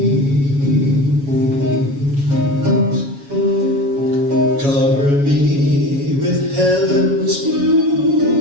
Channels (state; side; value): late; left; 7.2 ms